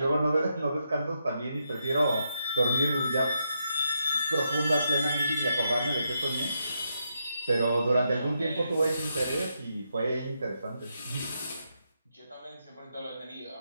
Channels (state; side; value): inverted; both; correlation -0.82